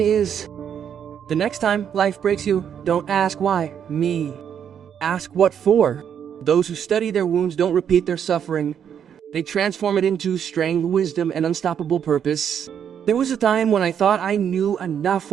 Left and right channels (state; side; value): quieter; left; 8.5 dB